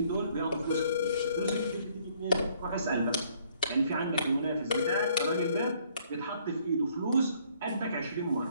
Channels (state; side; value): inverted; both; correlation -0.63